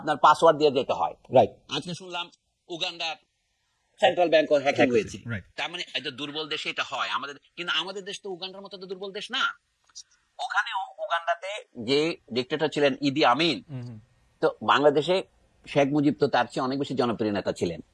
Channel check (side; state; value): both; identical; correlation 1.00